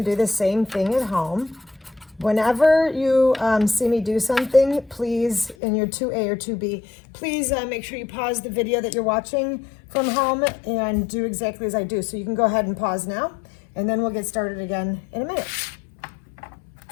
do the same thing at home. Whenever you see me do something, please, in your 2A or 2B, please make sure you pause the video that you're watching from home and do exactly as I do. So you can go ahead and pause now, and then we'll get started again in a minute.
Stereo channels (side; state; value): right; drops out; at 5.6 s